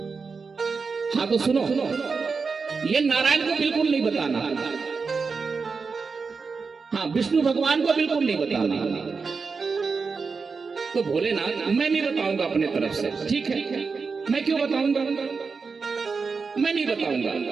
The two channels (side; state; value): left; quieter; 4.9 dB